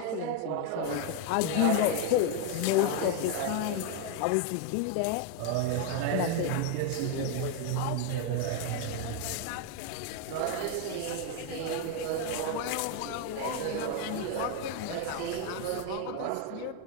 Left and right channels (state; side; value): different; both; correlation 0.01